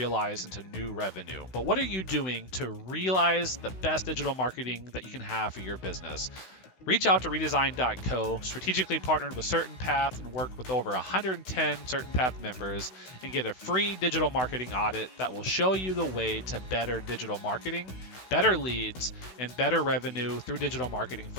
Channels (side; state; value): right; late; 16 ms